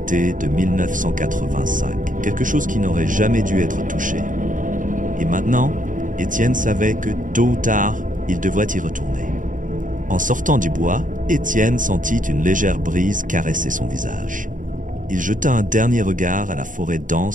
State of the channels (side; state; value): left; late; 0.38 ms